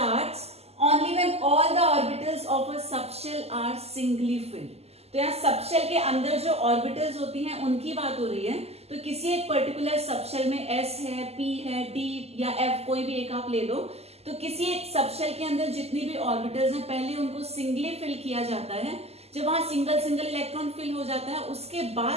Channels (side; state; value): left; late; 0.30 ms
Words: only when all the orbitals of a subshell are singly filled. तो यहाँ सबशेल के अंदर जो ऑर्बिटल्स होती हैं उनकी बात हो रही है. तो किसी एक पर्टिकुलर सबशेल में S है, P है, D या F, कोई भी एक आप ले लो. तो किसी एक सबशेल के अंदर जितनी भी ऑर्बिटल्स हैं पहले उनको सिंगली फिल किया जाता है. जब वहां सिंगल सिंगल इलेक्ट्रॉन फिल हो जाता है उसके